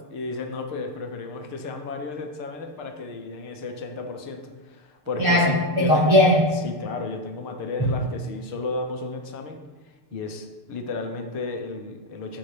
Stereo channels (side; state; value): left; late; 6.7 ms